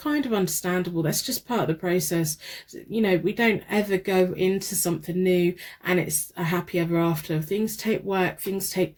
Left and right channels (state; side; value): identical; both; correlation 1.00